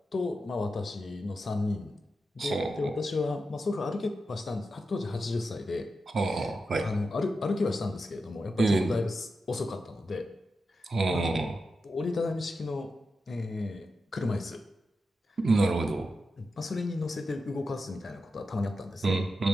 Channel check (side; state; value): both; normal; correlation 0.89